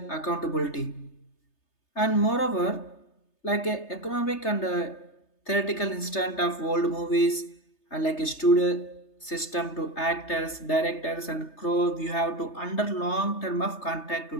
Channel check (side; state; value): right; late; 3.3 ms